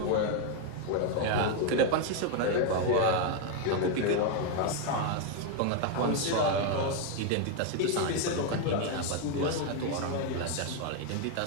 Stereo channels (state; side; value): different; both; correlation 0.01